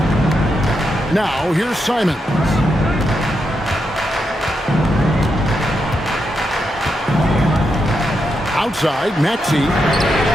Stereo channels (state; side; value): normal; both; correlation 0.84